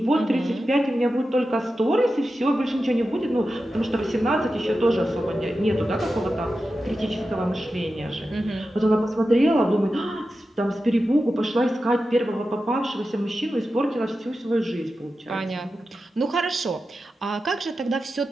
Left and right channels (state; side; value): normal; both; correlation 0.92